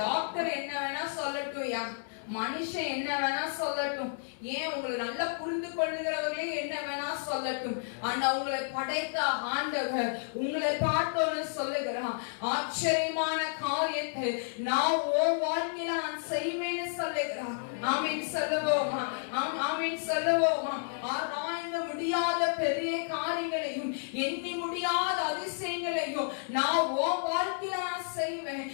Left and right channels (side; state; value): right; silent; 57 dB below the other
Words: என்ன வேணா சொல்லட்டும், மனுஷன் என்ன வேணா சொல்லட்டும், ஏன் உங்களை நல்லா புரிந்து கொள்கிறவர்களே என்ன வேணா சொல்லட்டும், ஆனா உங்களை படைத்த ஆண்டவர் உங்களை பார்த்தோன்னு சொல்லுகிறான், ஆச்சரியமான காரியத்தை நான் உன் வாழ்க்கையில நான் செய்வேன்னு சொல்லுகிறான். ஆமீன் சொல்லுவோமா, ஆமீன் சொல்லுவோமா. ஆராய்ந்து முடியாத பெரிய காரியங்களையும் எண்ணி முடியாத அதிசயங்களையும் நான் உன் வாழ்க்கையில நான் செய்வேன்,